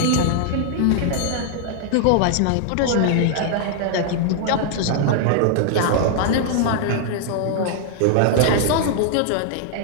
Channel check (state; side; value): different; both; correlation 0.00